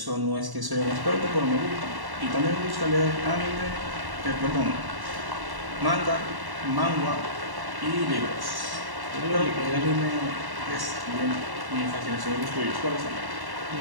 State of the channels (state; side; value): late; left; 1.1 ms